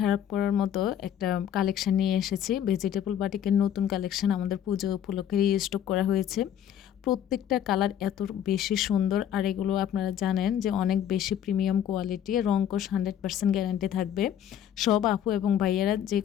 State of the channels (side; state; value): right; quieter; 10.0 dB